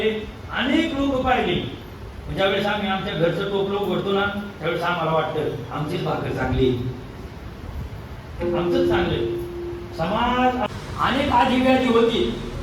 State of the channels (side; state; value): both; identical; correlation 1.00